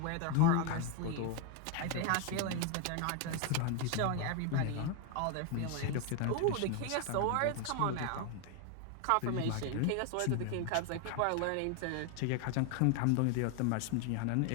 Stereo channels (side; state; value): both; different; correlation 0.01